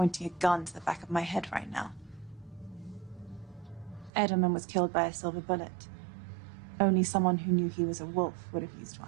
a gun to the back of my head right now. Edelman was killed by a silver bullet. Only someone who knew he was a wolf would have used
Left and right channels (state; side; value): drops out; left; at 4.1 s